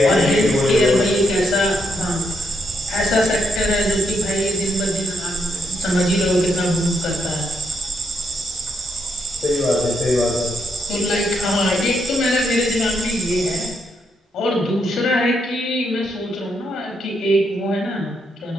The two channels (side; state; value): both; normal; correlation 0.78